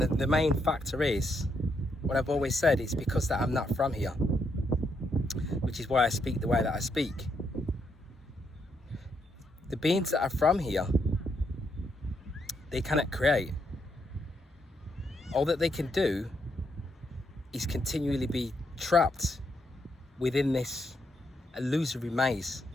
main factor is, what I've always said, it's because that I'm not from here, which is why I speak the way that I speak. The beings that are from here, they cannot create. All that they can do is continually be trapped within this illusory maze,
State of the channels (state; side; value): normal; both; correlation 0.78